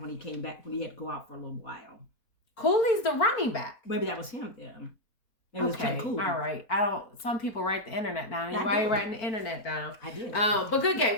when he came back, when he had to go out for a little while. Cooley's the running back. Maybe that was him then. It was Ken Cooley. All right. Some people write the internet down. Why are you writing the internet down? I did. But good game.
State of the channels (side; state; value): right; late; 4.5 ms